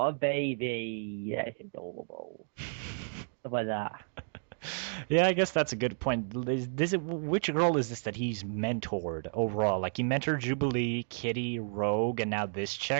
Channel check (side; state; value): left; silent; digital silence